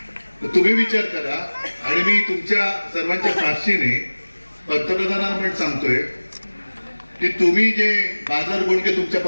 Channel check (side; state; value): both; inverted; correlation -1.00